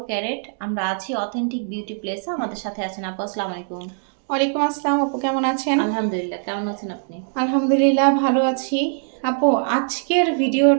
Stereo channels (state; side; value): silent; left; digital silence